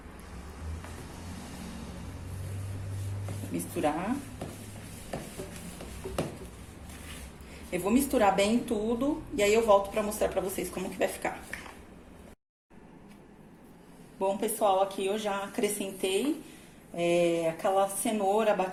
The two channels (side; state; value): both; identical; correlation 1.00